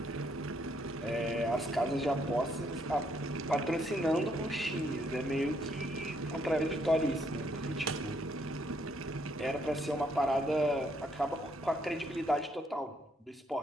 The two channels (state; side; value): normal; both; correlation 0.71